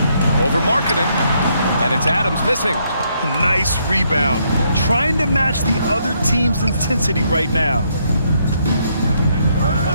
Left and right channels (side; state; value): both; inverted; correlation -0.73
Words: Over Markkanen. And it's Adams missing. Nice rebound. Trying to match the other team's intensity right now.